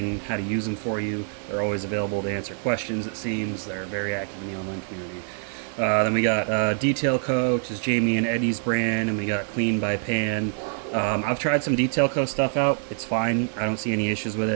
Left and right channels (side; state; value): left; silent; 60 dB below the other